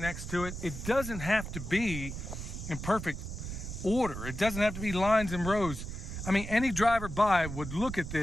to it. It doesn't have to be in perfect order. It doesn't have to be lines and rows. I mean, any driver by would look at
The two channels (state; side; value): noise; right; rumble, 7 dB below the sound